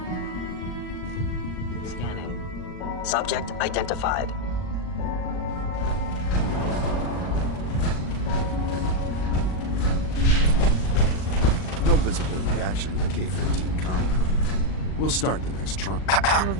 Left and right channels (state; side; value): late; right; 38 ms